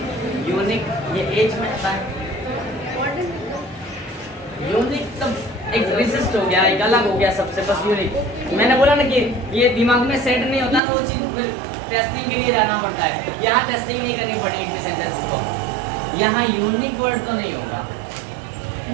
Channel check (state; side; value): drops out; left; at 10.8 s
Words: unique, ये एज में आता है। यूनिक तब एक विशिष्ट हो गया, एक अलग हो गया सबसे, बस यूनिक। मैंने बोला ना कि ये दिमाग में सेट नहीं होता ना, वो चीज फिर टेस्टिंग के लिए लाना पड़ता है। यहाँ टेस्टिंग नहीं करनी पड़ी एक भी सेंटेंस को, यहाँ यूनिक वर्ड तो नहीं होगा।